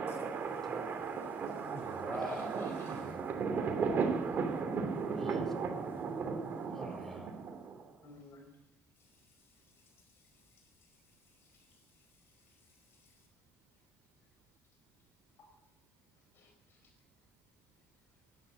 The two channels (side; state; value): left; quieter; 4.6 dB